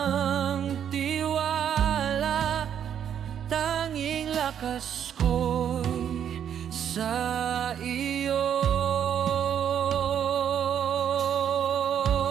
tiwala, tanging lakas ko'y sa iyo.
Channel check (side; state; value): left; quieter; 9.1 dB